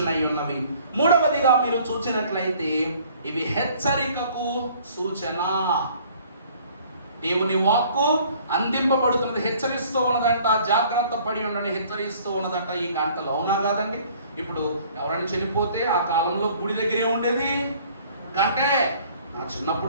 ఉన్నవి. మూడవదిగా మీరు చూసినట్లయితే ఇవి హెచ్చరికకు సూచన. దేవుని వాక్కు అందింపబడుతున్నది, హెచ్చరిస్తూ ఉన్నదంట. జాగ్రత్త పడి ఉండని హెచ్చరిస్తూ ఉన్నదంట ఈ గంటలు. అవునా కాదండి? ఇప్పుడు ఎవరైనా చనిపోతే ఆ కాలంలో గుడి దగ్గరే ఉండేది గంటే. నా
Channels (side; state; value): both; inverted; correlation -0.55